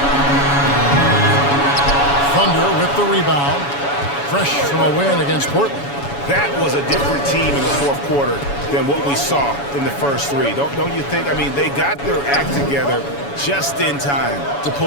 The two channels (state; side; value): late; right; 7.1 ms